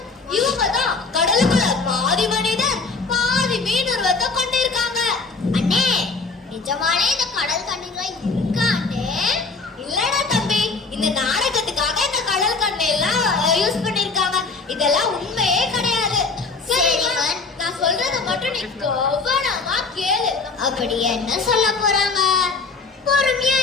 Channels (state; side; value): quieter; right; 4.2 dB